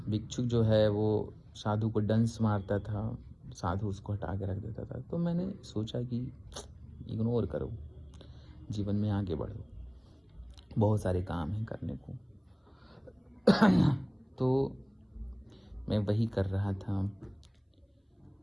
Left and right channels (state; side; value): identical; both; correlation 1.00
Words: भिक्षुक जो है वो साधु को डंस मारता था, साधु उसको हटा के रख देता था। तो मैंने सोचा कि इग्नोर करो, जीवन में आगे बढ़ो, बहुत सारे काम हैं करने को। तो मैं वही कर रहा था।